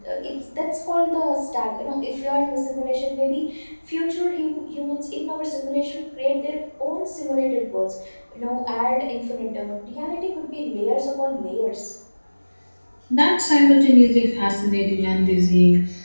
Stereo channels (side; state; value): both; inverted; correlation -1.00